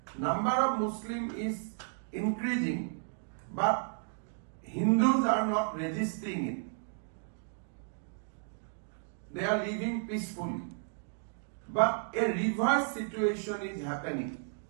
number of Muslim is increasing, but Hindus are not resisting it. They are living peacefully. But a reverse situation is happening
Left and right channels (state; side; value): silent; left; digital silence